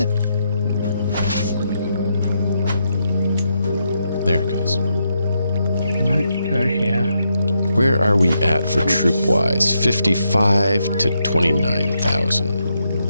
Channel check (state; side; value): inverted; both; correlation -0.81